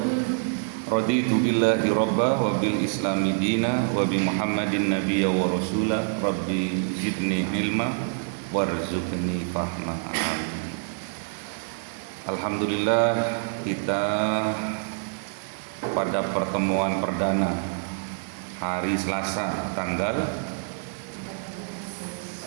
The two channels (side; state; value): left; silent; digital silence